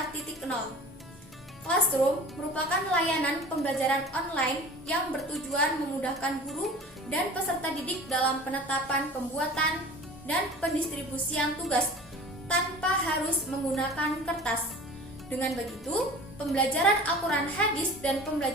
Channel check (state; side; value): normal; both; correlation 0.41